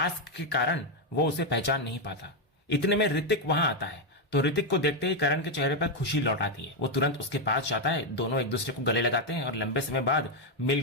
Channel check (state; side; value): normal; both; correlation 0.03